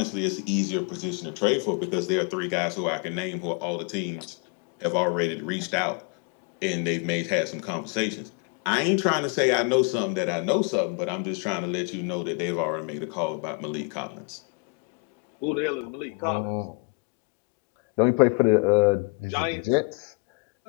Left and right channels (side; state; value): right; quieter; 31.5 dB